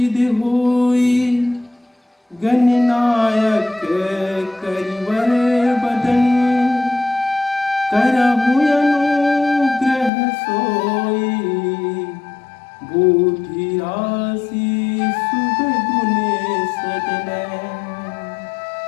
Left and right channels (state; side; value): drops out; right; at 10.1 s